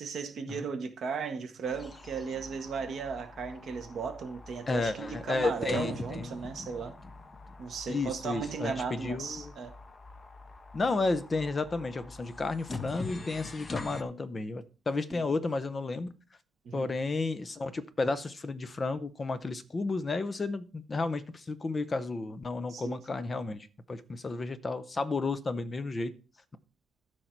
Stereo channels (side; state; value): both; normal; correlation 0.84